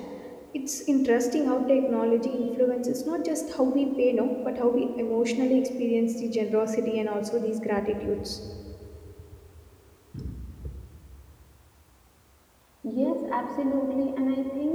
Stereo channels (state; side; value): identical; both; correlation 1.00